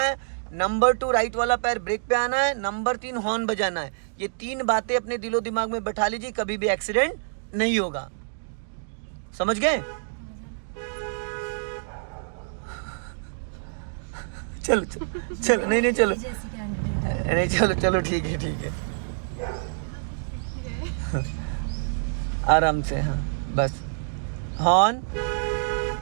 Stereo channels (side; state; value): left; silent; digital silence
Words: नंबर 2, राइट वाला पैर ब्रेक पे आना है। नंबर 3, हॉर्न बजाना है। ये 3 बातें अपने दिलो दिमाग में बैठा लीजिए, कभी भी एक्सीडेंट नहीं होगा। समझ गए? चलो चलो चलो, नहीं चलो, नहीं चलो चलो, ठीक है ठीक है, आराम से। हाँ बस, हॉर्न।